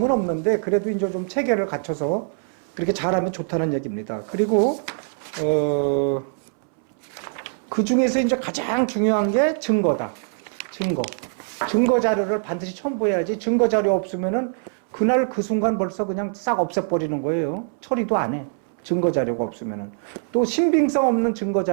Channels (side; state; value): left; silent; 63 dB below the other